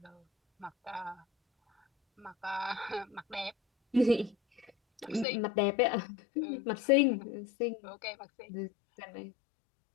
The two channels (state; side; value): drops out; right; at 5.2 s